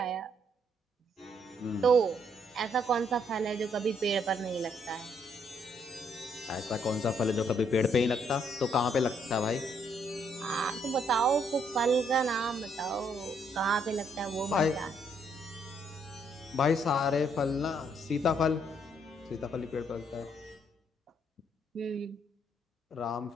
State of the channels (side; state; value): both; normal; correlation 0.70